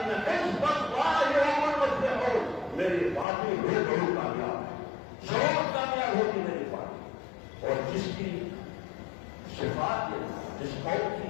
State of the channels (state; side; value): drops out; right; at 3.2 s